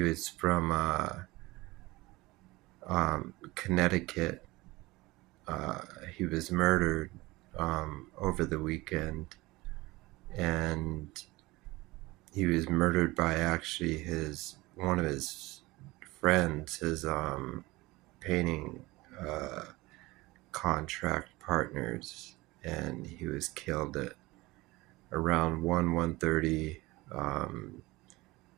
was from Connecticut. He was murdered over the weekend, and he was murdered by actually his one of his friends, his painting uh, contract partners, and he was killed at around 1:30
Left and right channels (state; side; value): quieter; left; 20.9 dB